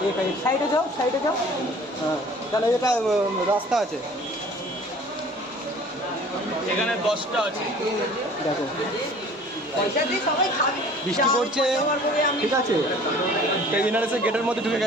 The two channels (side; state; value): both; normal; correlation 0.48